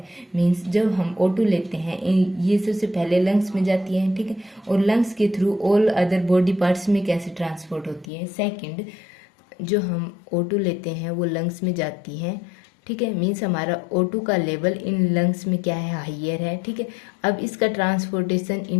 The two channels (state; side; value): drops out; right; at 8.1 s